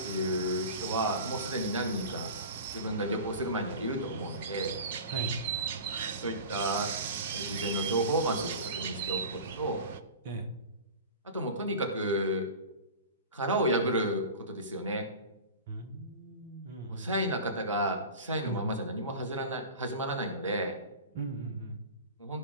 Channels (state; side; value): inverted; both; correlation -0.34